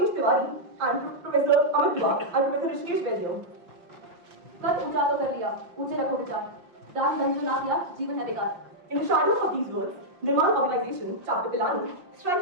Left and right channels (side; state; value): left; late; 5.7 ms